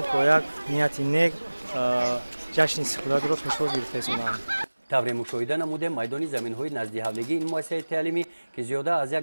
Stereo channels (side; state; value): both; inverted; correlation -1.00